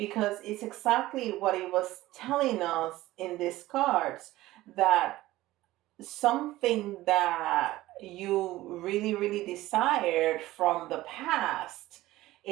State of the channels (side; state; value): left; quieter; 16.8 dB